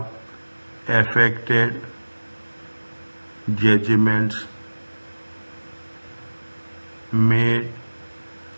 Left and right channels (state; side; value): inverted; both; correlation -1.00